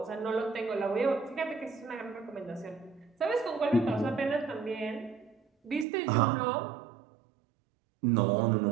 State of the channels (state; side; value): drops out; left; at 5.9 s